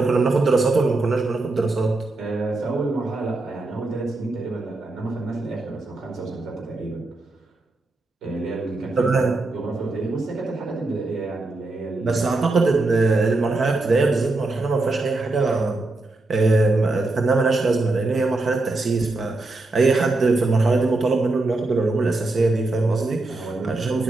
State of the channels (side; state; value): left; quieter; 3.1 dB